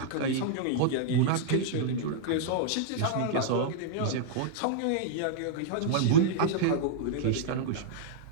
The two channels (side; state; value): both; different; correlation -0.02